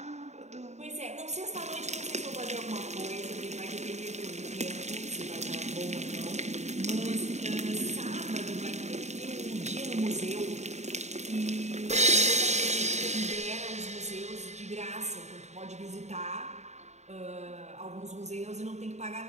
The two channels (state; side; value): late; left; 0.33 ms